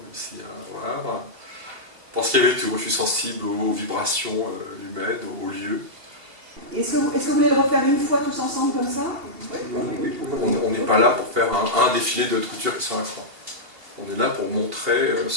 ici à Havre. Parce qu'il y avait tout, je suis sensible aux vibrations humaines, aux lieux. Est-ce que vous voulez le refaire une fois tous ensemble comme ça? Oui. On n'est pas là pour faire un défilé de haute couture qui sont à croix. On est là pour montrer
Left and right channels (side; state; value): left; late; 2.8 ms